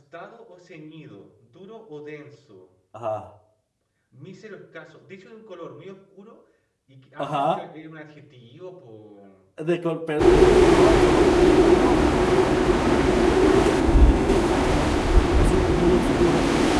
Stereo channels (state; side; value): identical; both; correlation 1.00